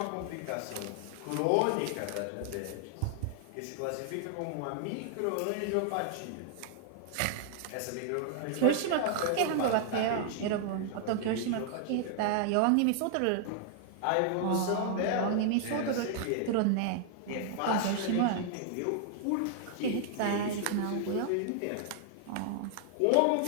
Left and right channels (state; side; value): different; both; correlation 0.00